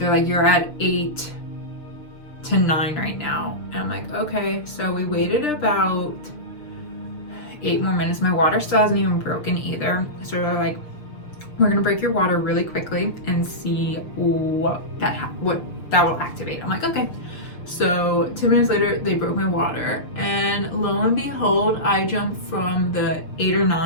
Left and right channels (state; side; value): late; right; 6.7 ms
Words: like, you're at 8 to 9 right now. And I'm like, okay. So we waited about 8 more minutes. My water still hasn't even broken either. So they're like, we're gonna break your water really quickly and see what that will activate. I'm like, okay. So 2 minutes later, they broke my water, and lo and behold, I jumped from the 8 or